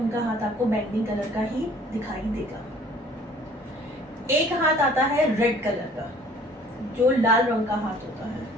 हाथ आपको बैंगनी कलर का ही दिखाई देगा। एक हाथ आता है रेड कलर का, जो लाल रंग का हाथ होता है।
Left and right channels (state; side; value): normal; both; correlation 0.53